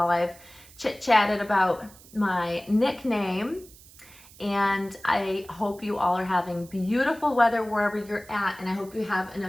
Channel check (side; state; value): right; noise; hiss, 22 dB below the sound